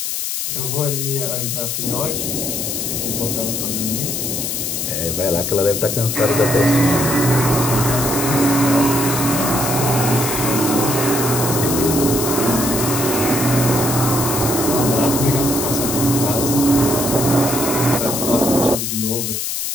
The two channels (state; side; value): noise; left; hiss, 2 dB below the sound